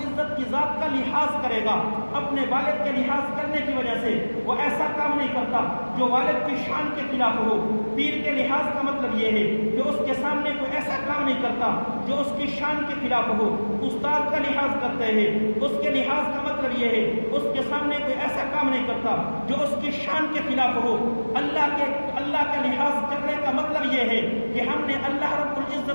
کی ذات کا لحاظ کرے گا، اپنے والد کے لحاظ کرنے کی وجہ سے وہ ایسا کام نہیں کرتا جو والد کی شان کے خلاف ہو۔ پیر کے لحاظ کا مطلب یہ ہے کہ اس کے سامنے کوئی ایسا کام نہیں کرتا جو اس کی شان کے خلاف ہو۔ استاد کا لحاظ کرتے ہیں، اس کے لحاظ کا مطلب یہ ہے اس کے سامنے کوئی ایسا کام نہیں کرتا جو اس کی شان کے خلاف ہو۔ اللہ کا لحاظ کرنے کا مطلب یہ ہے کہ ہم نے اللہ رب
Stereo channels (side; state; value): both; inverted; correlation -1.00